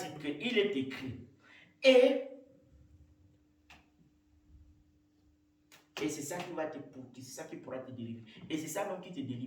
qu'il est écrit. Et c'est ça qui va te c'est ça qui pourra te délivrer. Et c'est ça même qui te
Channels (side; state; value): both; identical; correlation 1.00